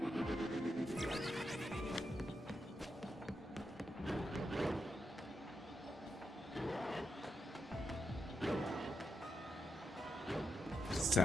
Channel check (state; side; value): normal; both; correlation 0.84